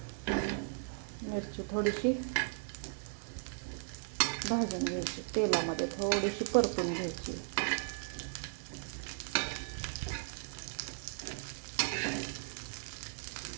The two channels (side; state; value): left; silent; digital silence